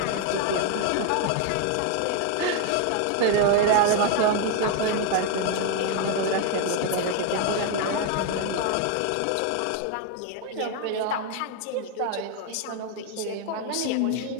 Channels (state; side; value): different; both; correlation 0.01